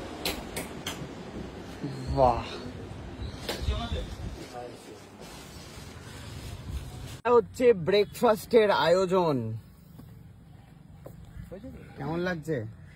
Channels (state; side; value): identical; both; correlation 1.00